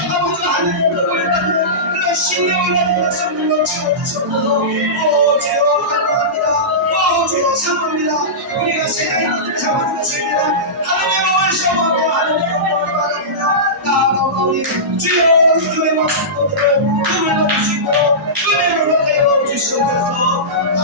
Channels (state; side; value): normal; both; correlation -0.19